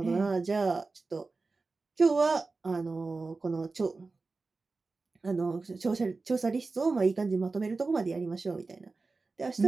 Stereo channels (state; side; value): quieter; left; 3.8 dB